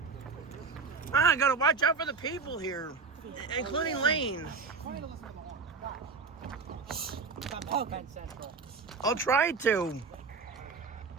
gotta watch out for the people here, including Lane. I'll try to.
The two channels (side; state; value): left; quieter; 4.7 dB